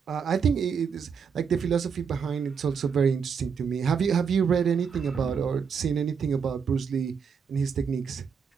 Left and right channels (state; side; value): quieter; left; 6.4 dB